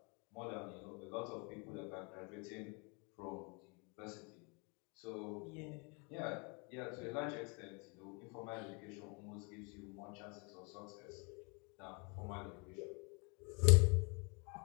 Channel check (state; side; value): quieter; right; 31.9 dB